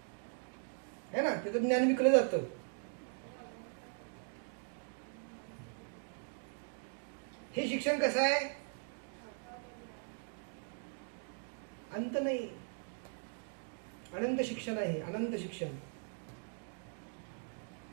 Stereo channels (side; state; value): left; silent; 51 dB below the other